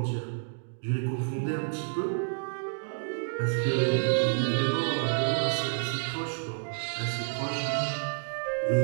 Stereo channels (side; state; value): left; silent; digital silence